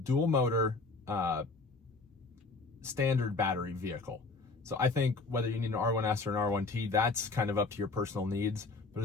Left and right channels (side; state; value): right; quieter; 3.8 dB